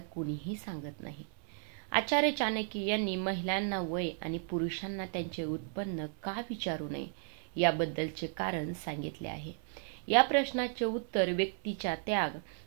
सांगत नाही. आचार्य चाणक्य यांनी महिलांना वय आणि पुरुषांना त्यांचे उत्पन्न का विचारू नये याबद्दलचे कारण सांगितले आहे. या प्रश्नाचे उत्तर व्यक्तीच्या त्याग,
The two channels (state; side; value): silent; left; 55 dB below the other